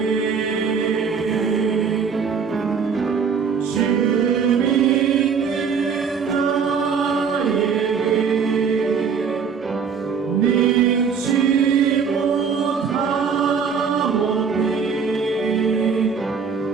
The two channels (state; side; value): quieter; left; 6.2 dB